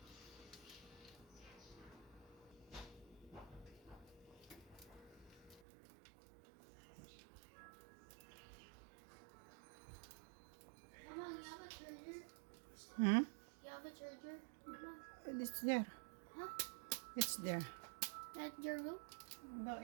You have a charger? Mama? It's there. Huh? It's there. At your room? No,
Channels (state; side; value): drops out; left; at 5.6 s